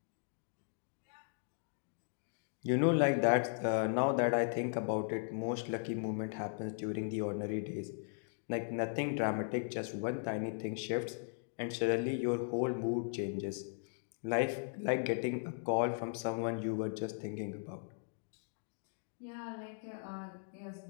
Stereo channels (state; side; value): silent; right; digital silence